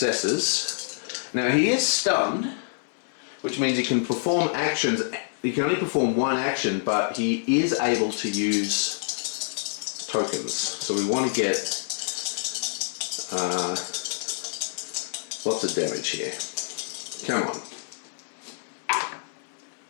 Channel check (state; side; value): silent; right; 58 dB below the other